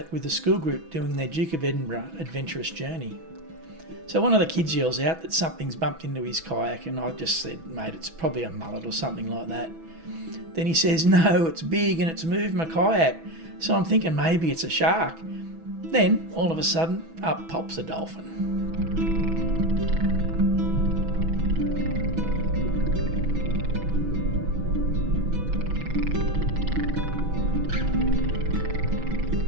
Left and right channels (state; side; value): late; left; 6.1 ms